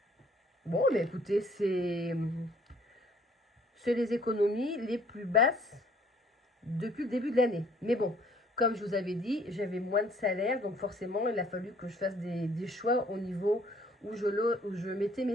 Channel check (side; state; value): both; normal; correlation 0.59